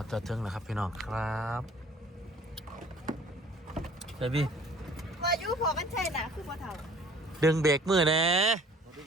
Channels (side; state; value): both; normal; correlation 0.52